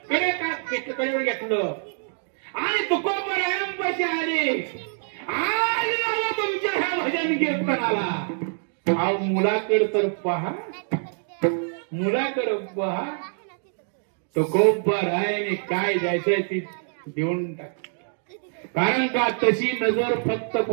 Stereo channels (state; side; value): silent; left; 62 dB below the other